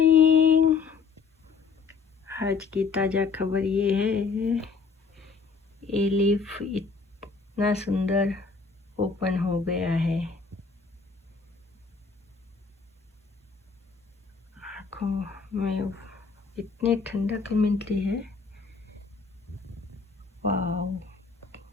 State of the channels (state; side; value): quieter; right; 5.1 dB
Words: आज की ताज़ा खबर ये है, एलिफ इतना सुंदर ओपन हो गया है। आँखों में इतनी ठंडक मिलती है, वाव।